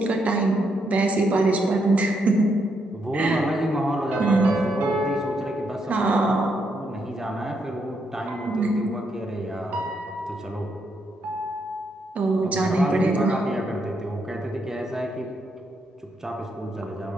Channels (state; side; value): normal; both; correlation 0.78